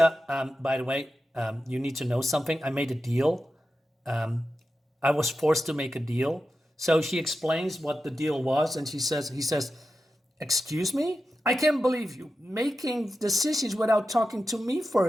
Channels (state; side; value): normal; both; correlation 0.91